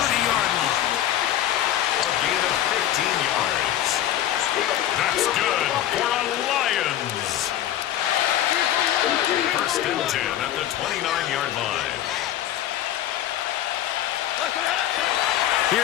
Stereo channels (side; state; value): right; quieter; 12.1 dB